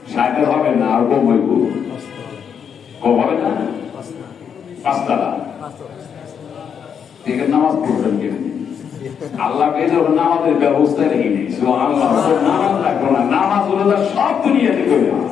সাইকেল হবে না, আর কম হইব, কম হবে না, 5 তালা। ঠিক আছে, নামাজ পড়বেন কেন? আল্লাহ যখন নামাজের ব্যবস্থা রেখে নেই, আল্লাহ নামাজ রাখবো না, নামাজ হলো সব দুনিয়াতে করে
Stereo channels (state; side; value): quieter; right; 7.5 dB